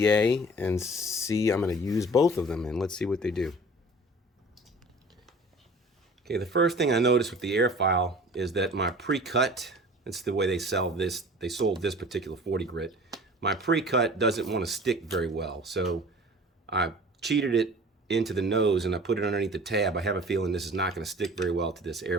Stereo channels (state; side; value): normal; both; correlation 0.44